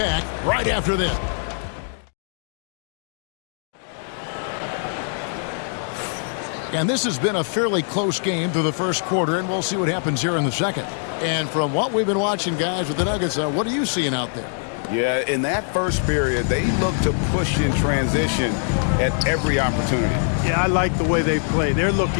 right after this. And this has been a fairly close game through the first quarter, and we'll see what happens here in the second. And from what we've been watching, guys, with the Nuggets, what are you seeing out there? Yeah, in that first period, they look to push in transition at every opportunity. Yeah, I like the way they play. They're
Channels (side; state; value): right; silent; 64 dB below the other